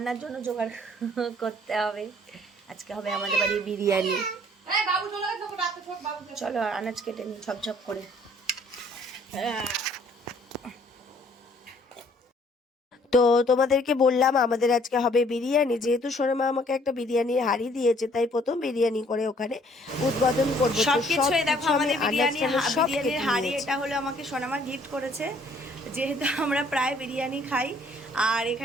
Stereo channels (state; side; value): normal; both; correlation 0.60